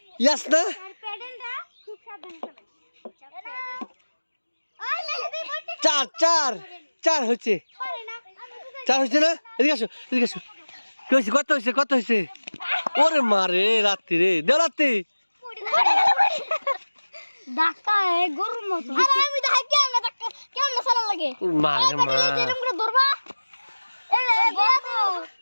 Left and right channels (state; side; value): inverted; both; correlation -1.00